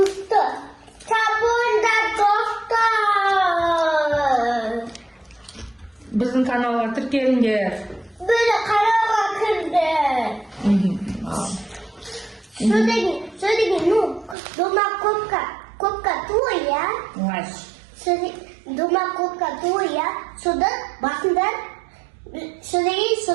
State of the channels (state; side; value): drops out; left; at 14.4 s